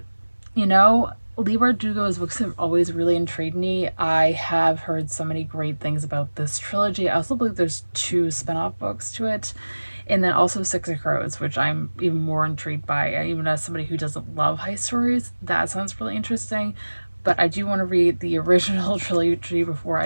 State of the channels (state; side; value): inverted; both; correlation -1.00